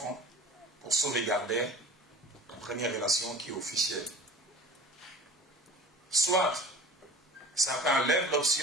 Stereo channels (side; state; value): both; normal; correlation 0.42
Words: pour sauvegarder la première relation qui est officielle. soit certains lèvent